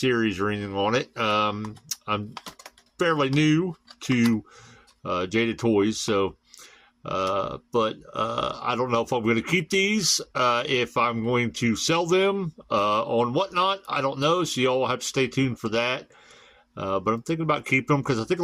or anything on it. I'm fairly new to Jada Toys, so... But I don't know if I'm going to keep these, if I'm going to sell them on Whatnot. I don't know, so y'all have to stay tuned for that. But I'm thinking about keeping them because I think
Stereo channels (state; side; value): identical; both; correlation 1.00